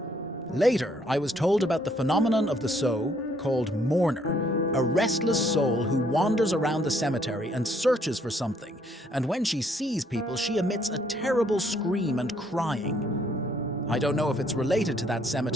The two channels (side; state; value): both; normal; correlation 0.67